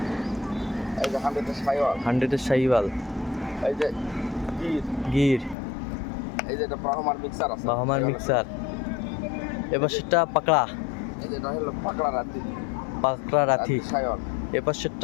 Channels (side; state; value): right; drops out; at 5.6 s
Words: এই যে 100 এর শাইওয়াল। 100 এর শাইওয়াল। এই যে গির। গির। এই যে এটা ব্রাহ্মার মিক্সার আছে। বাহামার মিক্সার। এবার সেটা পাকড়া। এই যে এটা হলো পাকড়া রাতি। পাকড়া রাথি। শাইওয়াল। এবার